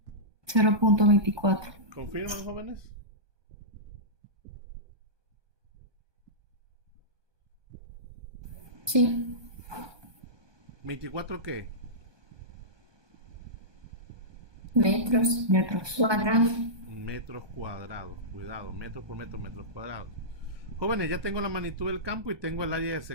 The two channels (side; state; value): left; late; 1.2 ms